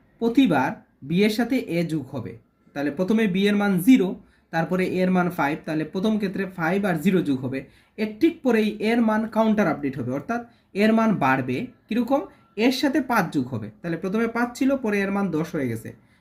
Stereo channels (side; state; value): both; identical; correlation 1.00